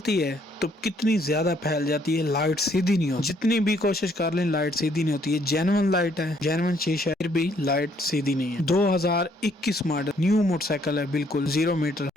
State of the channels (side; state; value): both; normal; correlation 0.67